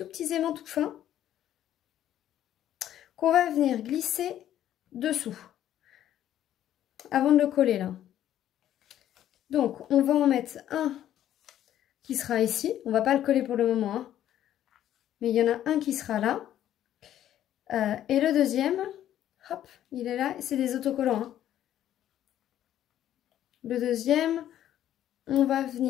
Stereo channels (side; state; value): right; quieter; 11.6 dB